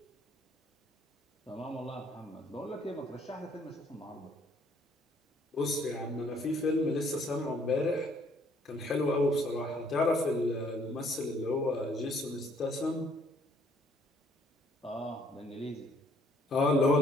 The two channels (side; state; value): both; normal; correlation 0.64